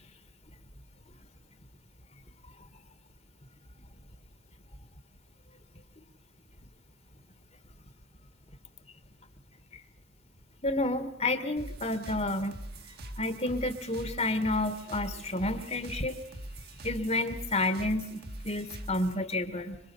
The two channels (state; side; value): normal; both; correlation 0.33